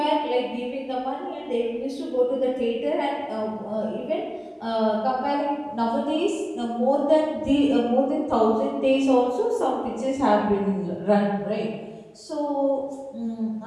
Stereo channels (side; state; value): both; identical; correlation 1.00